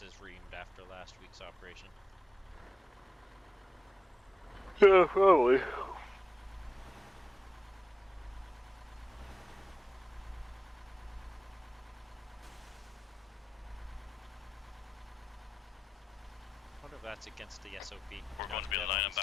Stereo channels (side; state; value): both; normal; correlation 0.95